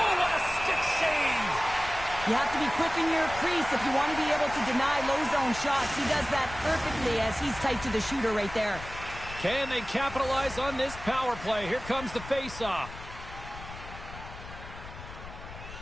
what a stick save. You have to be quick in your crease if you want to be able to deny low zone shots. He does that perfectly as he's tight to the shooter right there. Can they capitalize on this power play? Here comes the face-off.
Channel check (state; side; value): noise; left; rumble, 13 dB below the sound